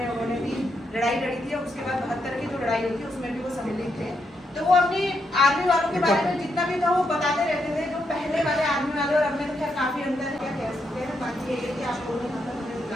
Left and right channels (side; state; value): both; normal; correlation 0.80